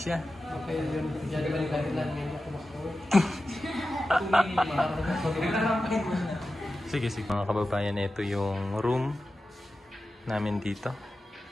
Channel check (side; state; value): both; normal; correlation 0.93